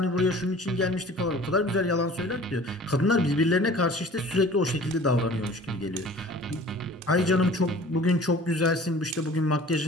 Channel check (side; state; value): both; normal; correlation 0.46